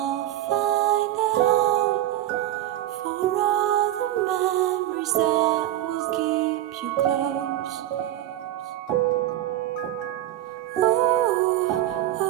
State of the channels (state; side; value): quieter; left; 13.5 dB